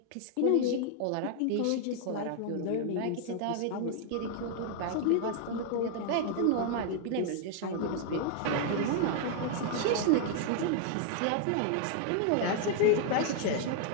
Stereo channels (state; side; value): different; both; correlation 0.00